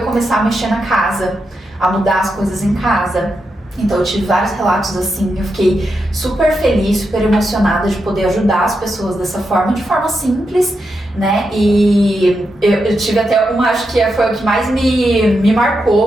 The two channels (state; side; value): normal; both; correlation 0.86